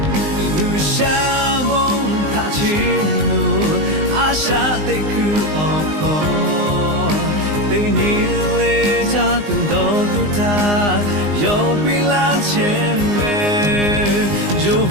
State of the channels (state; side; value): late; left; 19 ms